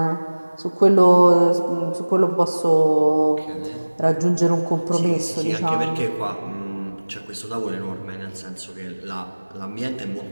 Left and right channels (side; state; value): both; inverted; correlation -1.00